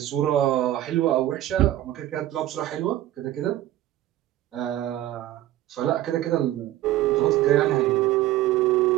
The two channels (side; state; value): left; quieter; 14.2 dB